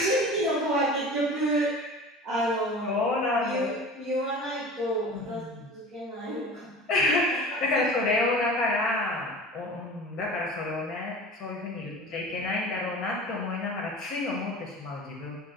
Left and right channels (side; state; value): both; normal; correlation 0.38